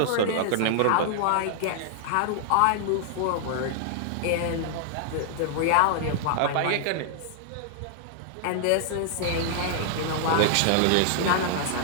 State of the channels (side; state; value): both; different; correlation -0.01